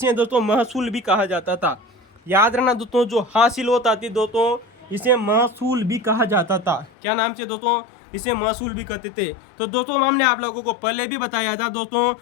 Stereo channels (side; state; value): right; drops out; at 6.9 s